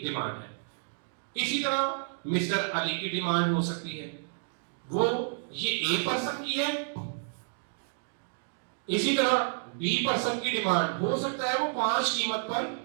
डिमांड है। इसी तरह मिस्टर अली की डिमांड हो सकती है, वो ये ए पर्सन की है। इसी तरह बी पर्सन की डिमांड हो सकता है वो 5 कीमत पर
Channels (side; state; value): left; silent; digital silence